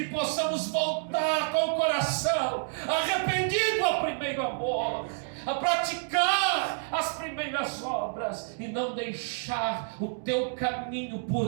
possamos voltar com o coração arrependido ao primeiro amor, a praticar as primeiras obras e não deixar o Teu caminho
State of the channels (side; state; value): left; silent; digital silence